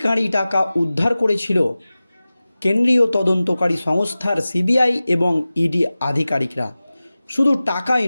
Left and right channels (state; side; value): inverted; both; correlation -0.97